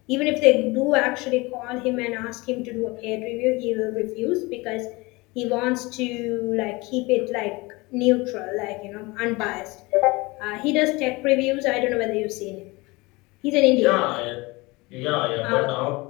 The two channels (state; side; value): quieter; right; 23.8 dB